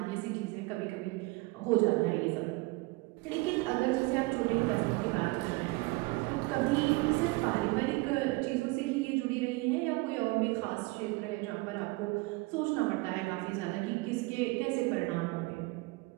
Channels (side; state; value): left; quieter; 24.1 dB